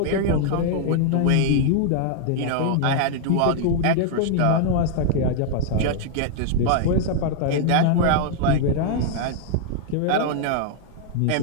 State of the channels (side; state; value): both; different; correlation 0.00